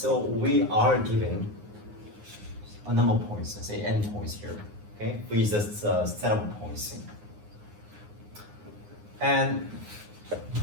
we are given a number of points, let's say n points here, okay, with a set of points. And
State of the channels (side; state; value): left; late; 9.6 ms